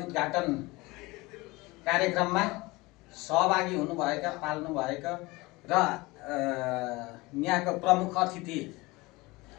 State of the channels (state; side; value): quieter; right; 22.5 dB